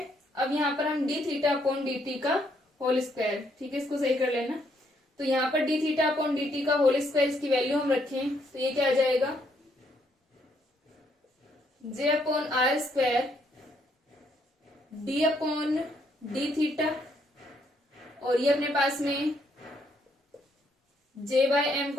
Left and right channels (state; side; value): normal; both; correlation 0.72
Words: अब यहाँ पर हम D theta upon D T का होल स्क्वायर, ठीक है, इसको सही कर लेना। तो यहाँ पर D theta upon D T का होल स्क्वायर इसकी वैल्यू हम रखें तो ये क्या आ जाएगा, जे upon R square D upon D theta और ये अपने पास में जे बाय एम